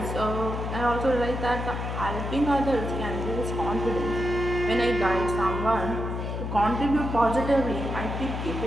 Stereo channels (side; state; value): left; noise; hum, 4 dB below the sound